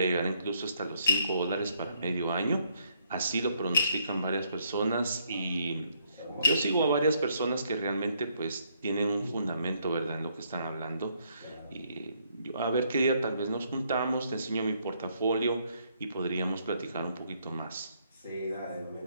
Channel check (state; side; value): inverted; both; correlation -0.71